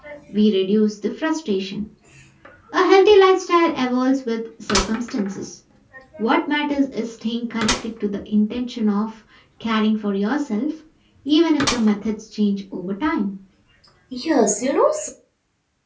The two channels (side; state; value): both; identical; correlation 1.00